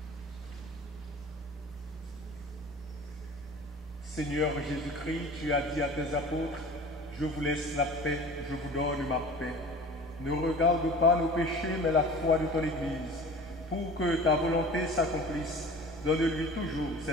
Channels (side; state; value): both; normal; correlation 0.41